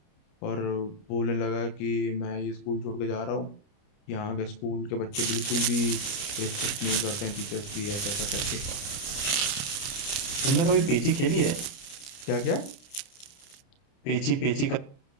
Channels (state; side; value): late; right; 29 ms